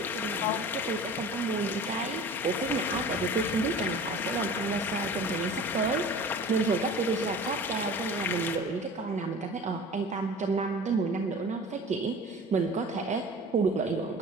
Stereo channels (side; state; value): both; normal; correlation 0.40